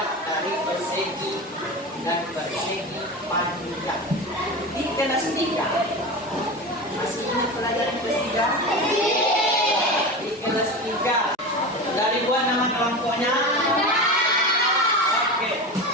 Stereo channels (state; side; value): normal; both; correlation 0.26